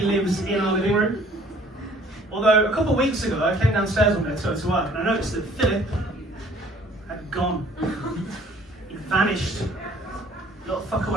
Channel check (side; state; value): both; normal; correlation 0.56